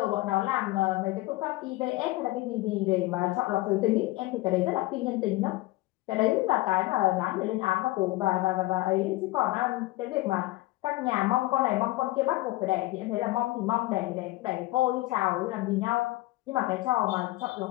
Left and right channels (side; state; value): right; quieter; 19.2 dB